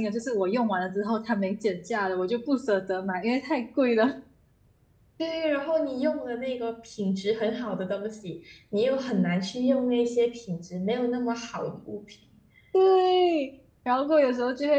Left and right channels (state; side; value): identical; both; correlation 1.00